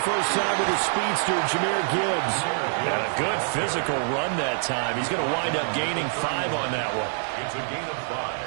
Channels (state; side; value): silent; left; digital silence